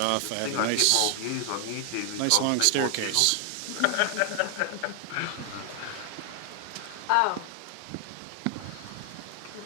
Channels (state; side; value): different; both; correlation 0.00